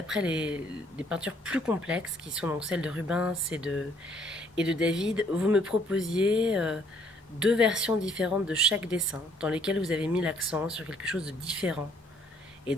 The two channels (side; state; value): both; normal; correlation 0.64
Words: les peintures plus complexes, qui sont donc celles de Rubens et de David, vous me proposiez 2 versions différentes de chaque dessin, dans lesquelles vous avez mis l'accent sur quelque chose de différent. Et